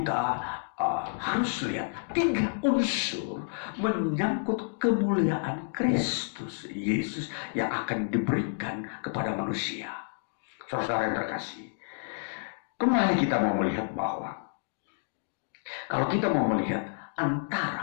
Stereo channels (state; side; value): silent; right; digital silence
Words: harus lihat. 3 unsur menyangkut kemuliaan Kristus Yesus yang akan diberikan kepada manusia. Saudara yang terkasih, kembali kita mau melihat bahwa kalau kita mau melihat